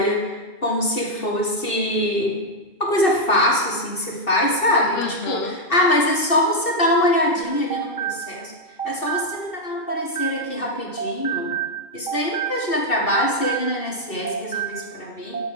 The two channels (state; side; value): late; right; 2.7 ms